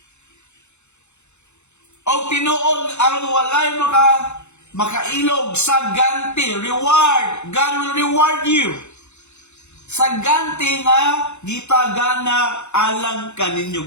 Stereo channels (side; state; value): right; late; 0.82 ms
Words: O tinuod, aron walay makailog sa ganti, reward. God will reward you. Sa ganti nga, gitagana alang